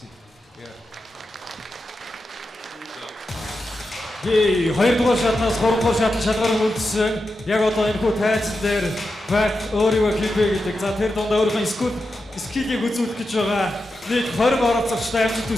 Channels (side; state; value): both; normal; correlation 0.89